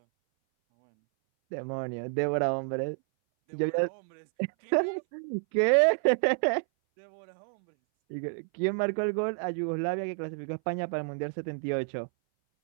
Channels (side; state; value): left; silent; 58 dB below the other